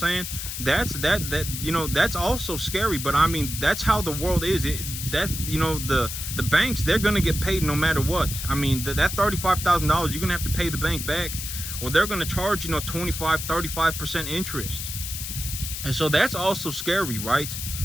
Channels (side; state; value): left; noise; hiss, 6 dB below the sound